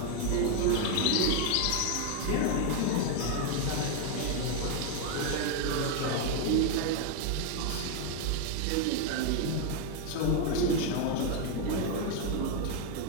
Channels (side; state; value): both; different; correlation 0.01